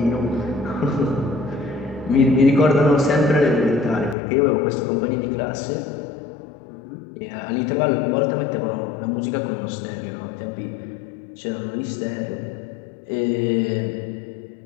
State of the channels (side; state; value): right; drops out; at 4.2 s